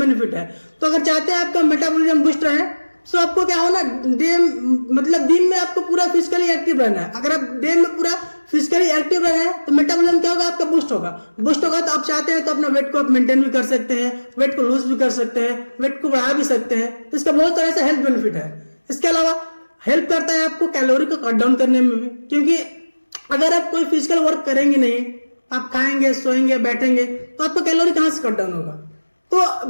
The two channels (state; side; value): inverted; both; correlation -1.00